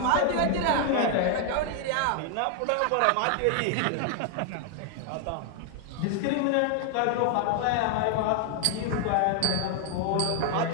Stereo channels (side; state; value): both; different; correlation 0.00